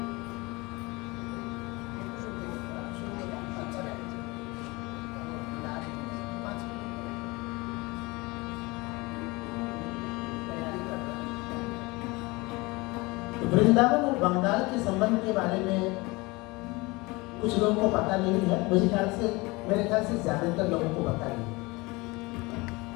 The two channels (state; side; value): quieter; right; 24.0 dB